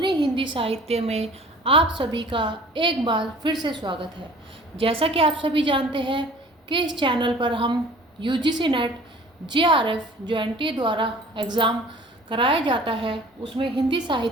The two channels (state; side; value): normal; both; correlation 0.48